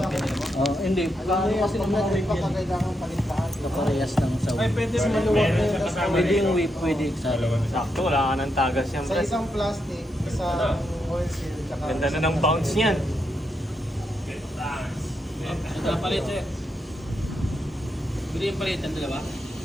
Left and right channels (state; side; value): normal; both; correlation 0.82